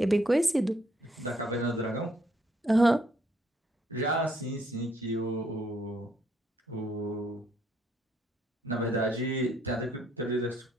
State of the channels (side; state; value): both; normal; correlation 0.69